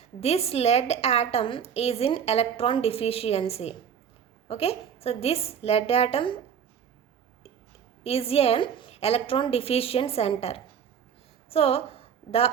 this lead atom is in electron deficiency. Okay, so this lead atom is an electron deficient center. So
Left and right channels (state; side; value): quieter; left; 7.8 dB